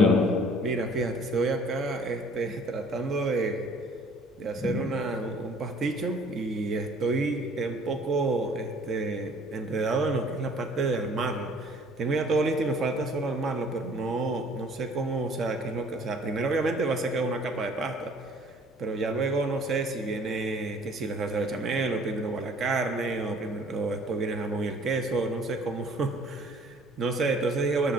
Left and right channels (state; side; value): normal; both; correlation 0.54